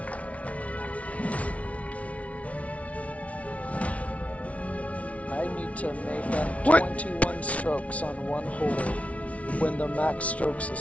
I need to make up What? 21 strokes on one hole when the max strokes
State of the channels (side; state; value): right; late; 0.065 ms